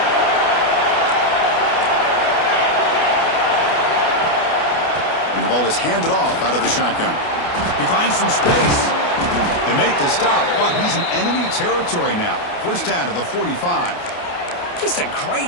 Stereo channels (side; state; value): right; late; 29 ms